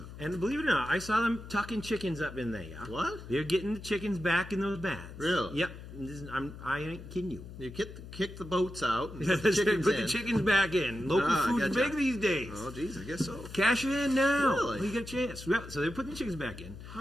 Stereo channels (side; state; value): left; noise; hum, 13 dB below the sound